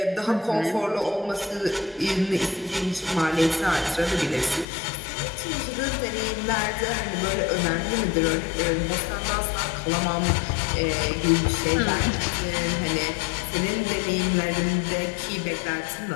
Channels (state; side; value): drops out; right; at 4.7 s